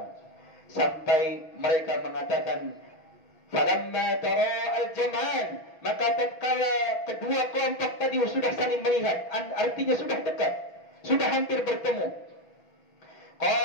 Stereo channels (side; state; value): right; late; 6.0 ms